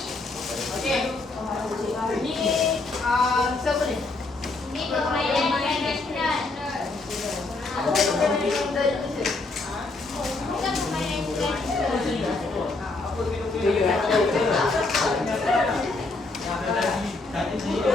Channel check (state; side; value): quieter; right; 3.4 dB